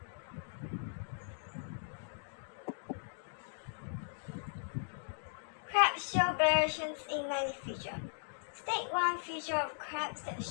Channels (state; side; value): silent; right; digital silence